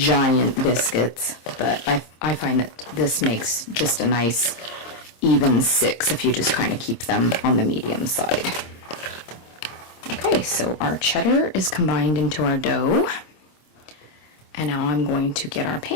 biscuits, but I find that this makes just a nice even 6 if you just kind of keep them on the medium side. Okay, so our cheddar is combined into our dough, and now I'm going to get our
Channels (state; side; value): late; right; 26 ms